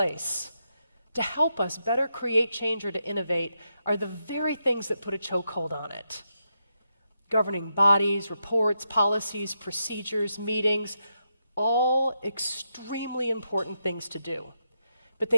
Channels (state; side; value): inverted; both; correlation -0.84